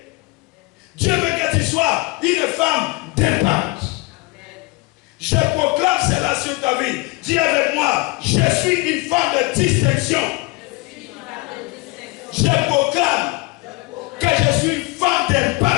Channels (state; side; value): quieter; right; 23.9 dB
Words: Dieu veut que tu sois une femme d'impact. Je proclame cela sur ta vie. Dis avec moi, je suis une femme de distinction. Je proclame que je suis une femme